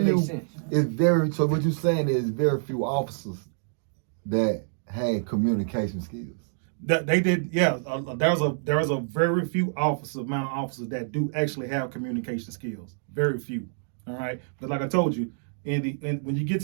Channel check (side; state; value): left; silent; digital silence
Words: right. few. So what you're saying is very few officers that had communication skills. They did, yeah. There's a very few amount of officers that do actually have communication skills. Very few. All right. But like I told you, when you get